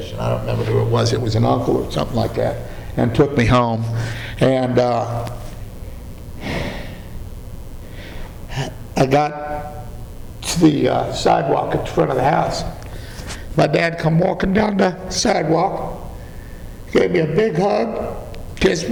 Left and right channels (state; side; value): identical; both; correlation 1.00